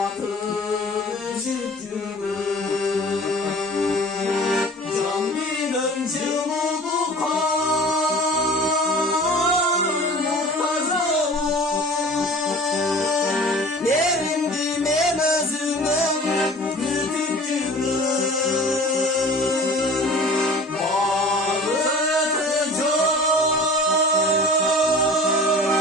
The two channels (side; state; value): both; normal; correlation 0.43